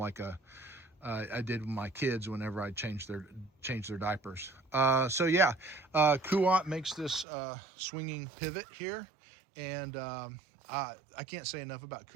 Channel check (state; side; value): drops out; left; at 7.2 s